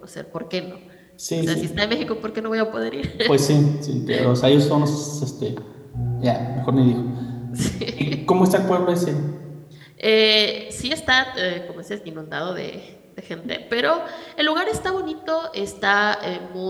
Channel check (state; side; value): identical; both; correlation 1.00